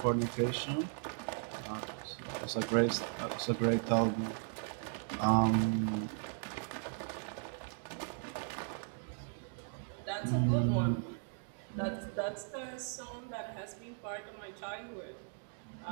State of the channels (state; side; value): silent; left; 53 dB below the other